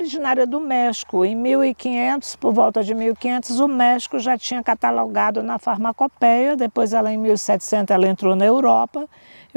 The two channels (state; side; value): inverted; both; correlation -1.00